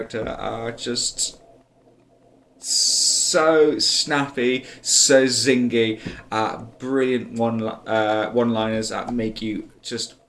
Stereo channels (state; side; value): identical; both; correlation 1.00